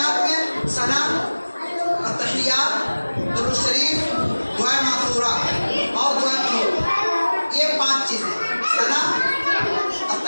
में सना, तहियात, दुरूद शरीफ, दुआ मासूरा और दुआ कुनूत, ये 5 चीजें, सना,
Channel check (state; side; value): inverted; both; correlation -1.00